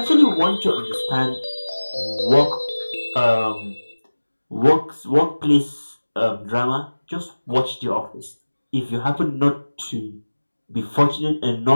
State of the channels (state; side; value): inverted; both; correlation -1.00